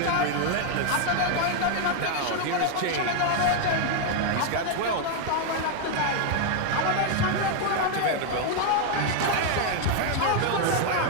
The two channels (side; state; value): both; different; correlation 0.01